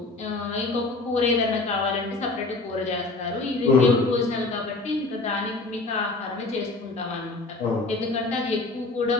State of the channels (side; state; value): right; quieter; 3.3 dB